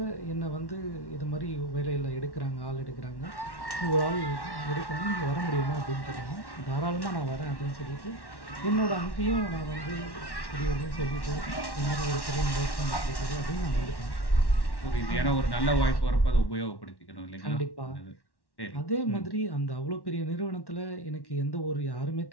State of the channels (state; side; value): late; right; 1.1 ms